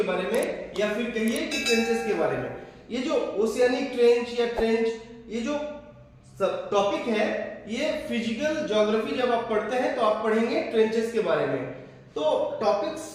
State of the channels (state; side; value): identical; both; correlation 1.00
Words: बारे में या फिर कहिए कि ट्रेंचेस के बारे में। ये जो ओशियानिक ट्रेंच या ट्रेंच ये जो टॉपिक है ये फिजिकल ज्योग्राफी जब आप पढ़ते हैं तो आप पढ़ेंगे ट्रेंचेस के बारे में। तो टॉपिक